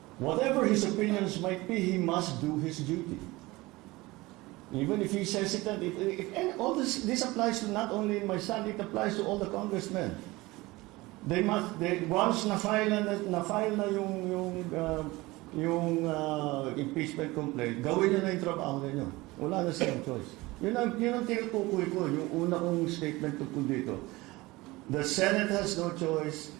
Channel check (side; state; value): left; quieter; 20.9 dB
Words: Whatever his opinions might be, he must do his duty. Even if he's hesitant, and all this applies to not only my son, it applies to all the congressmen. Once na-file na yung impeachment complaint, gawin nyo na yung trabaho ninyo. Wala na silang choice. Yun ang tinutukoy ko, yung una kong statement tungkol dito. The Senate has no choice,